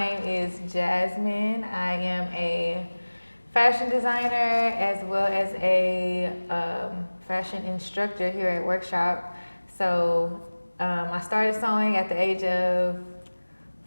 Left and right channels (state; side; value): inverted; both; correlation -1.00